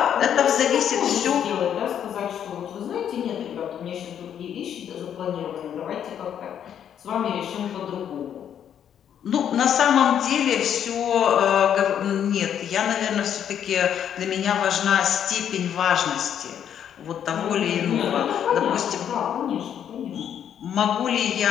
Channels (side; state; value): right; quieter; 9.2 dB